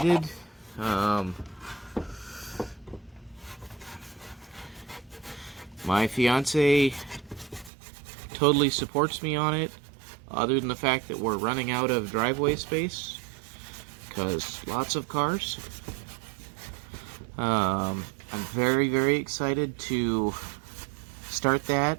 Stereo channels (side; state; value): left; drops out; at 7.7 s